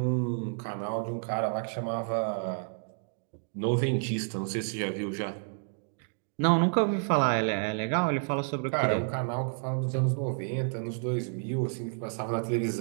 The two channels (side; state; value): left; silent; digital silence